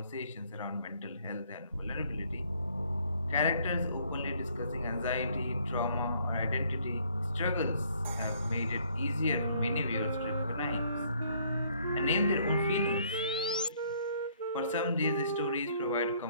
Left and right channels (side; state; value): both; inverted; correlation -0.63